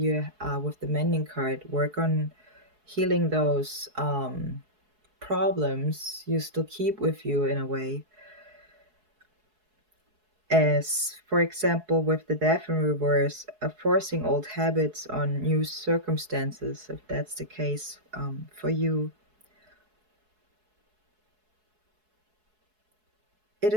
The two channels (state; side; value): late; left; 4.7 ms